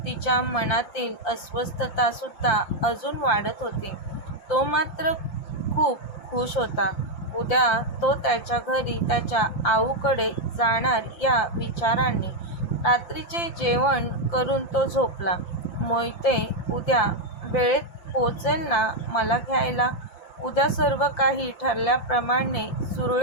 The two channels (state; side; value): late; right; 5.8 ms